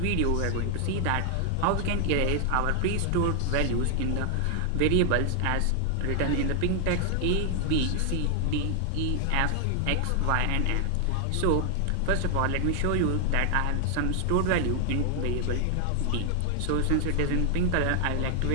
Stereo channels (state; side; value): different; both; correlation 0.00